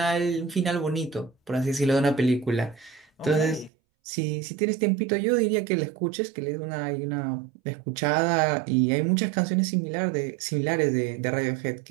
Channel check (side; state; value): left; drops out; at 3.7 s